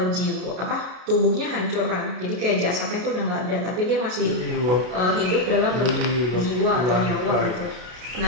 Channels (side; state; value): left; late; 33 ms